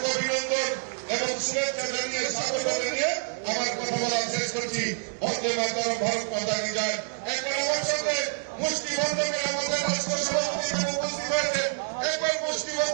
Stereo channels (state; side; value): silent; left; 58 dB below the other